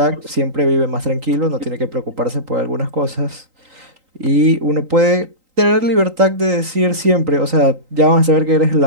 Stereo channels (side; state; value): left; late; 3.8 ms